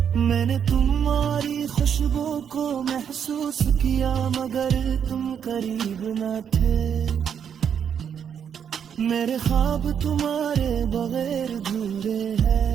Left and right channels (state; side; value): quieter; left; 8.0 dB